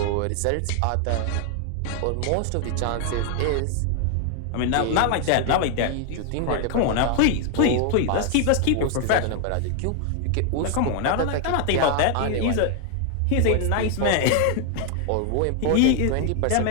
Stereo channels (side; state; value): both; different; correlation 0.00